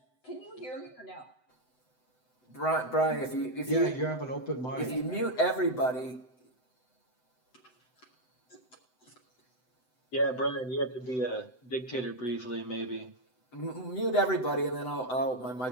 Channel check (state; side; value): late; right; 7.9 ms